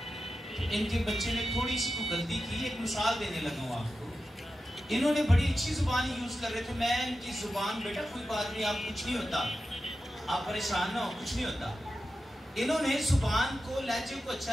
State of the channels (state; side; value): normal; both; correlation 0.91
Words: तो इनके बच्चे ने थोड़ी सी को गलती की। एक मिसाल देने लगा हूँ आपको। इन्होंने बड़ी अच्छी जुबान यूज कर रहे थे। मैं इनकी जुबान, बेटा कोई बात नहीं, आप कुछ नहीं होता, आप परेशान ना हो, कुछ नहीं होता। इन्होंने जुबान को, लहजे को अच्छा